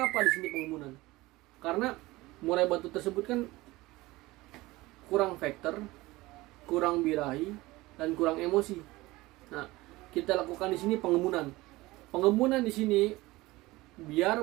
apa di sini pengembunan? Karena murai batu tersebut kan kurang vektor, kurang birahi, dan kurang emosi. Nah, kita lakukan di sini pengembunan. Pengembunan di sini biar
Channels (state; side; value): quieter; left; 19.9 dB